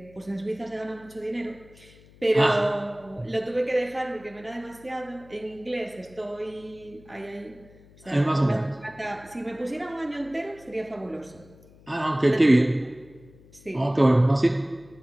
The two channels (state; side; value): noise; left; hum, 25 dB below the sound